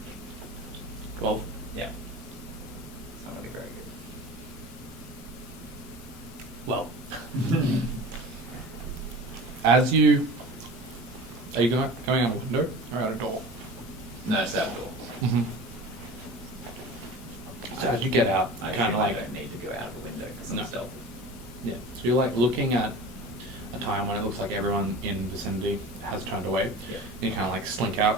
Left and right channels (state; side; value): normal; both; correlation 0.36